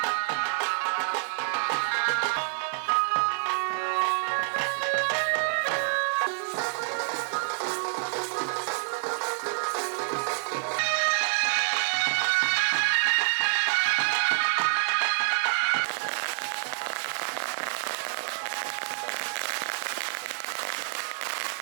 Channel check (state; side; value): silent; left; digital silence